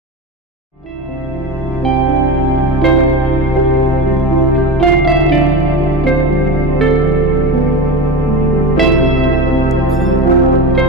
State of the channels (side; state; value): both; normal; correlation 0.24